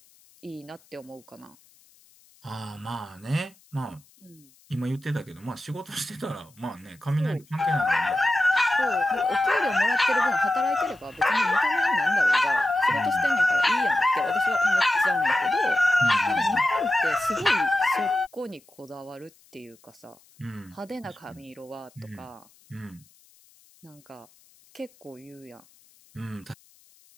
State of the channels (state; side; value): noise; left; hiss, 29 dB below the sound